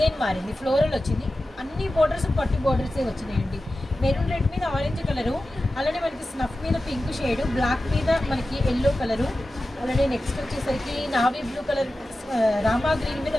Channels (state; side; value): normal; both; correlation 0.94